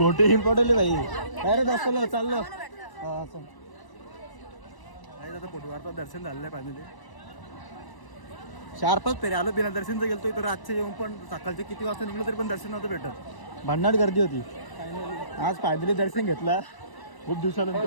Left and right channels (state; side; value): late; right; 1.0 ms